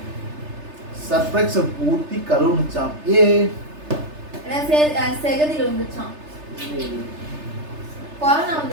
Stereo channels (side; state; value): left; late; 3.3 ms